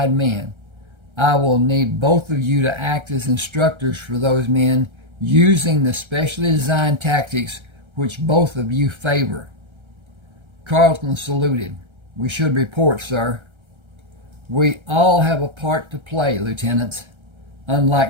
men. I will need both of you to act as instructors for those men using the specially designed tactics which both of you favor. Carlton saluted. We should report, sir. We all have a part to play, lieutenants.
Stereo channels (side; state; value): left; late; 1.3 ms